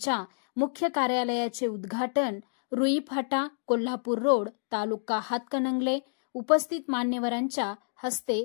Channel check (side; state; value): right; silent; digital silence